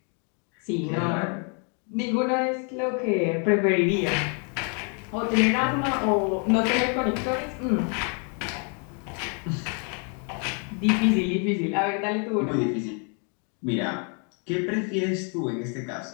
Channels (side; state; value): right; quieter; 38.7 dB